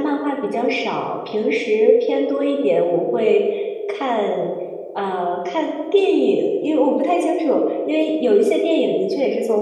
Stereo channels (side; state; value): both; identical; correlation 1.00